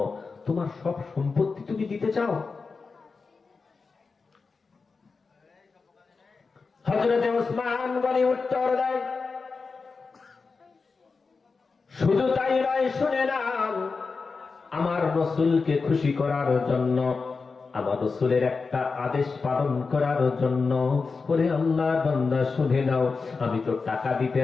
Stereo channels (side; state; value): right; quieter; 4.5 dB